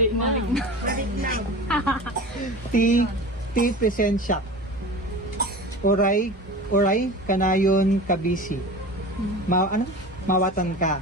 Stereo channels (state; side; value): normal; both; correlation 0.34